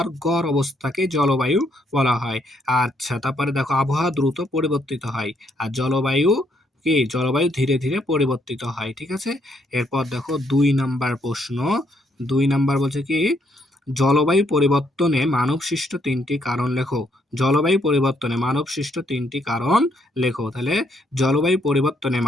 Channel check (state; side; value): normal; both; correlation 0.73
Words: গড় অবস্থাকে জলবায়ু বলা হয়। আচ্ছা, তারপরে দেখো আবহাওয়া দ্রুত পরিবর্তিত হয়, আর জলবায়ু ধীরে ধীরে পরিবর্তিত হয়, ঠিক আছে। এরপর দেখো ২ নাম্বার প্রশ্ন। ২ নাম্বার বলছে কি জলবায়ু পরিবর্তনে মানবসৃষ্ট ৩টি কারণ লেখো। জলবায়ু পরিবর্তনে মানবসৃষ্ট ৩টি কারণ লেখো। তাহলে জলবায়ু পরিবর্তনে